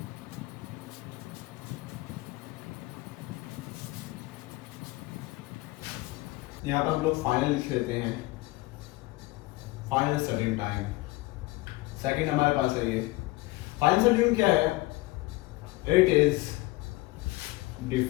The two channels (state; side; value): quieter; right; 20.6 dB